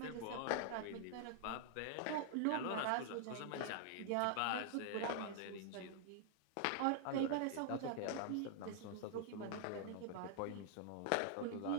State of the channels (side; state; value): both; different; correlation 0.00